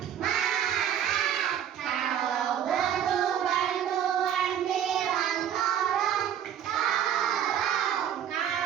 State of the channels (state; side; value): quieter; left; 9.7 dB